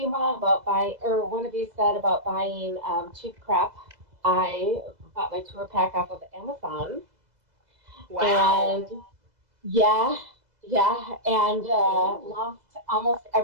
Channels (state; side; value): late; left; 2.0 ms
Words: about buying, or one of you said about buying cheap crap. I bought my tour pack off of Amazon, Wow. and yeah, yeah, and lost almost